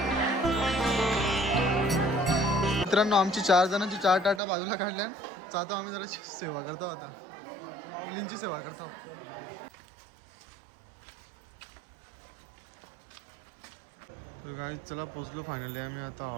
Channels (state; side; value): drops out; left; at 4.4 s